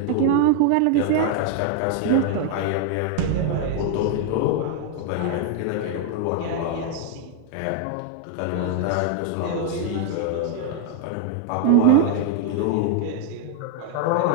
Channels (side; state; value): both; different; correlation 0.00